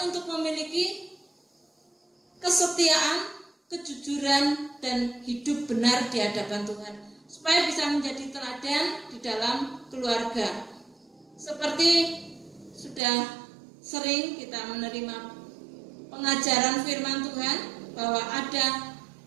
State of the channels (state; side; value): drops out; left; at 13.0 s